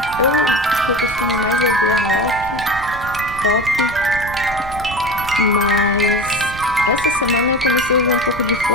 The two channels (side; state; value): right; noise; rumble, 13 dB below the sound